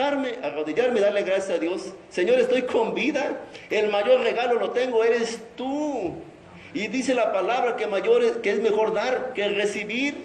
arrodillarme y darle gracias a Dios. Señor, estoy con vida. El mayor regalo lo tengo, eres tú. Y dice la palabra que es mejor dar que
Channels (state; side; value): identical; both; correlation 1.00